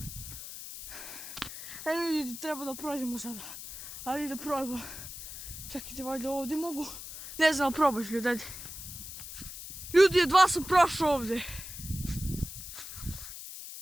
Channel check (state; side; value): noise; left; hiss, 11 dB below the sound